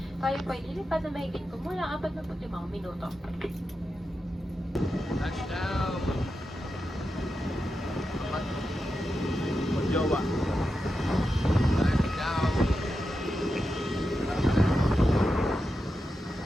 Tayo po ay lilipad na mahigit kumulang 45 minuto. Touchdown! Jowa. Touchdown!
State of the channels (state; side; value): normal; both; correlation 0.89